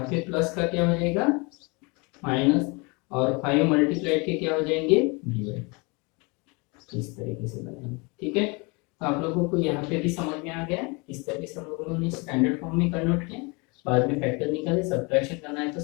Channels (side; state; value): right; quieter; 29.0 dB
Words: पे प्लस का क्या हो जाएगा माइनस, और 5 मल्टीप्लाई के क्या हो जाएंगे डिवाइड, इस तरीके से बनाएंगे, ठीक है। तो आप लोगों को यहाँ पे भी समझ में आ गया। इस तरीके से हम लोगों ने स्टैंडर्ड फॉर्म में कन्वर्ट किया, बाद में फैक्टर निकाले, सब्ट्रैक्शन करना है तो